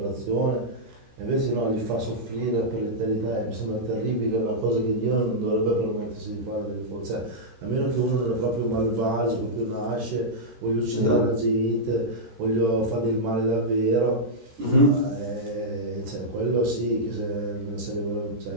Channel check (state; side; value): late; left; 13 ms